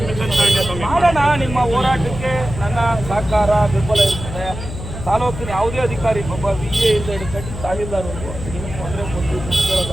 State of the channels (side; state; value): left; noise; hum, 9 dB below the sound